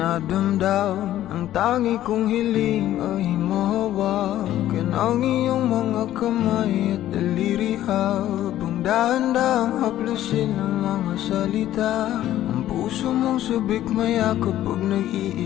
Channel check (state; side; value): quieter; right; 13.1 dB